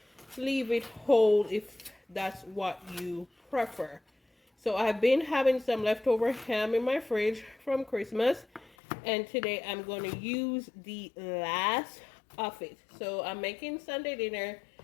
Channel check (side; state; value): right; drops out; at 8.7 s